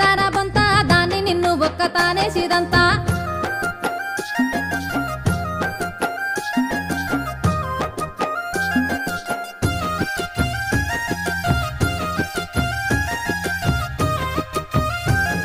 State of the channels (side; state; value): both; identical; correlation 1.00